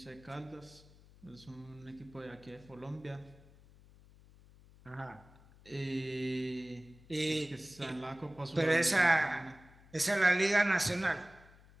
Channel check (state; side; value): noise; left; hum, 24 dB below the sound